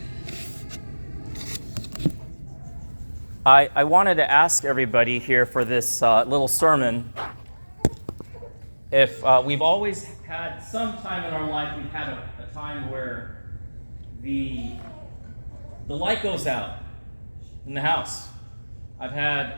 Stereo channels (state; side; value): inverted; both; correlation -1.00